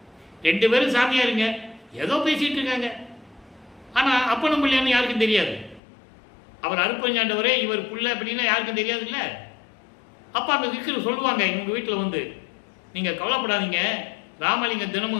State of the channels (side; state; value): right; drops out; at 5.8 s